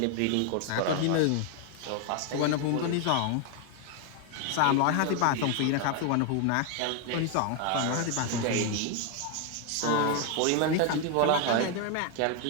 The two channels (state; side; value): different; both; correlation 0.01